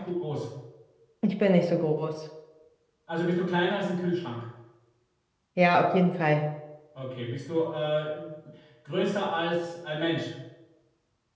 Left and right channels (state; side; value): identical; both; correlation 1.00